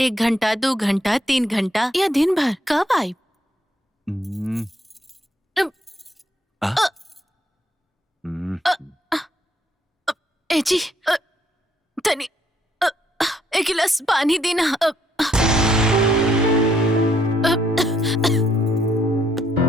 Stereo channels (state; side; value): normal; both; correlation 0.71